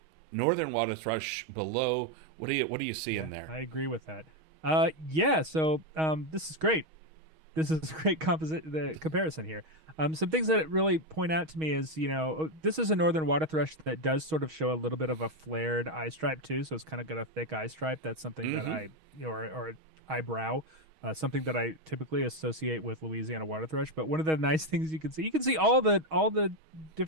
northern water thrush below. What do you see in there? I agree with that. Yeah. So this is great. This is a great the comparison here. Some things that really point out to me is, this is a northern water thrush that does sort of show a little bit of a flared eye stripe too. So it's kind of got a thick eye stripe. That's something that I, or eyebrow, something that I typically associate with Louisiana water thrush. But one of the nice things you can see all the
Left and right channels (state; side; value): late; left; 6.3 ms